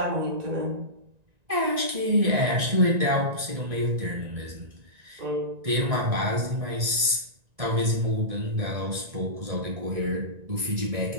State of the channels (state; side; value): late; left; 1.9 ms